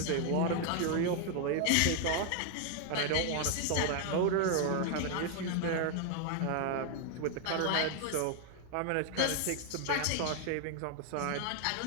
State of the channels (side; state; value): both; different; correlation 0.00